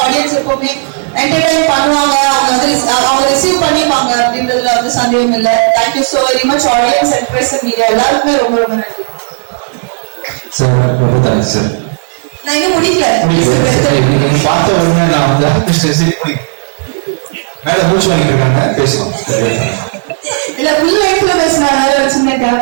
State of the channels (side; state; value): left; silent; 69 dB below the other